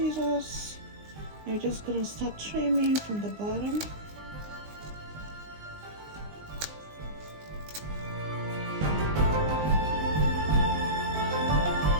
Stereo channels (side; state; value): left; late; 19 ms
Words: You're just going to start trimming from the bottom.